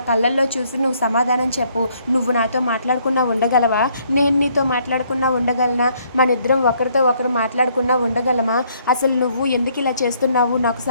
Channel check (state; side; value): inverted; both; correlation -0.67